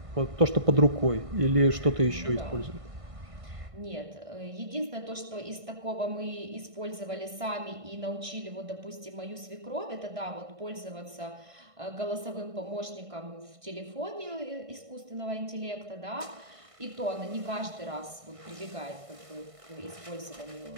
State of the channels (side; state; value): left; late; 1.5 ms